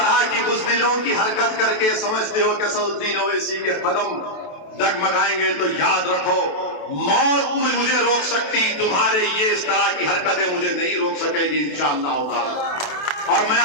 کی بزدلوں کی حرکت کر کے سمجھتے ہو کہ اسد الدین اویسی کے قدم ڈگمگائیں گے تو یاد رکھو، موت مجھے روک سکتی، تمہارے یہ اس طرح کی حرکتیں مجھے نہیں روک سکے گی انشاءاللہ تعالی۔ اور میں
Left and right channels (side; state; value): right; late; 28 ms